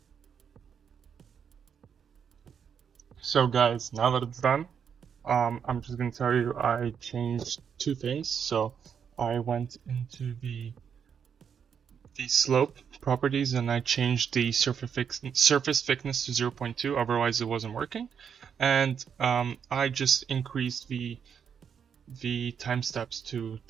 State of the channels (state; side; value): quieter; left; 7.4 dB